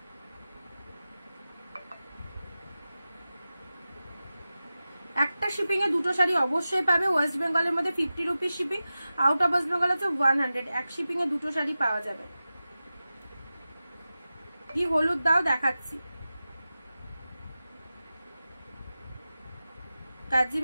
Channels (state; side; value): inverted; both; correlation -0.94